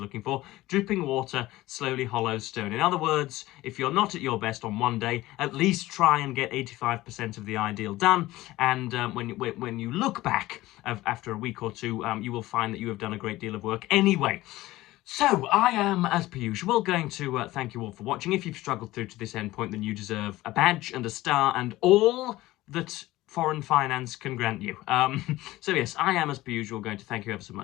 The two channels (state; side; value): quieter; right; 17.5 dB